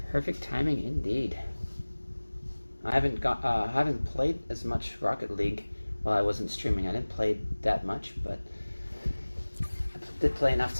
Perfect timing indeed. I haven't played as much Rocket League while I wasn't streaming. I didn't play that much, but I did play enough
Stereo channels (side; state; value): both; inverted; correlation -1.00